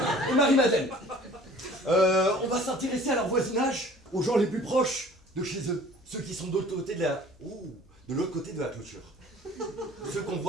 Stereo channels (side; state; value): left; noise; hum, 29 dB below the sound